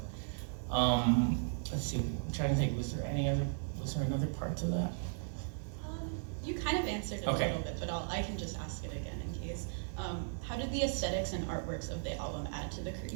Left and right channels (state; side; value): silent; left; digital silence